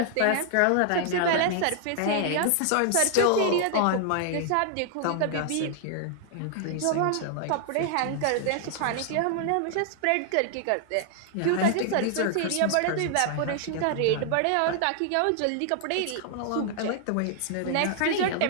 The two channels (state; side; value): different; both; correlation 0.00